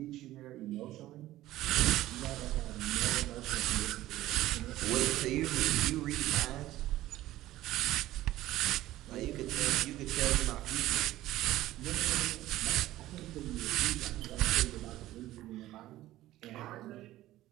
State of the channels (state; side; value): quieter; left; 15.4 dB